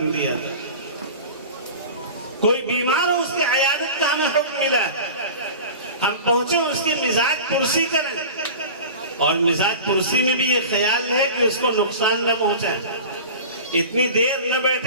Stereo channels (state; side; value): inverted; both; correlation -0.35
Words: دیا، کوئی بیمار ہو اس کی عیادت کا ہمیں حکم ملا ہے۔ ہم پہنچے اس کی مزاج پرسی کریں، اور مزاج پرسی میں بھی یہ خیال ہے کہ اس کو نقصان نہ پہنچائیں، اتنی دیر نہ